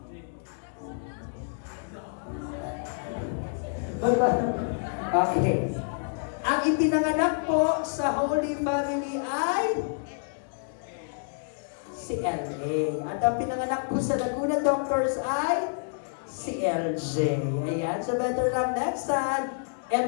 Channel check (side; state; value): right; silent; digital silence